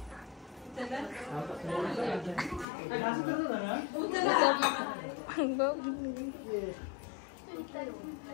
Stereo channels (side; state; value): right; drops out; at 2.7 s